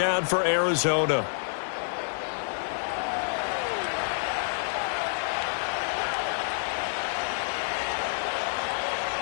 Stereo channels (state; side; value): silent; right; digital silence